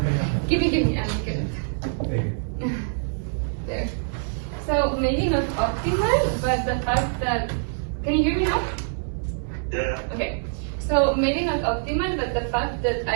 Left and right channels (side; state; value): left; silent; digital silence